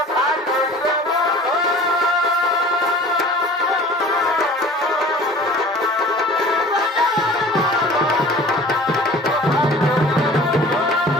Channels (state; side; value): normal; both; correlation 0.44